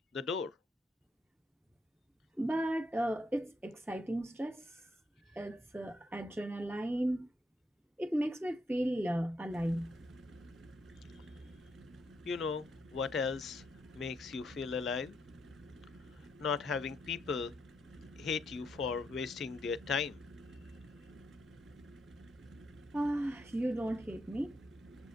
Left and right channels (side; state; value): both; normal; correlation 0.78